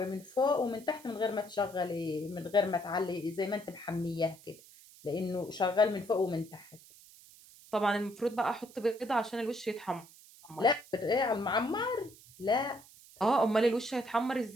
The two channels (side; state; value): right; noise; hiss, 22 dB below the sound